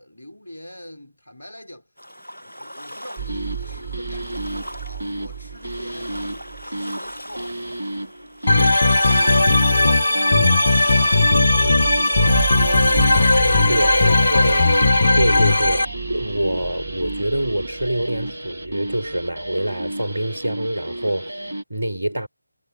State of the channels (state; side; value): inverted; both; correlation -0.90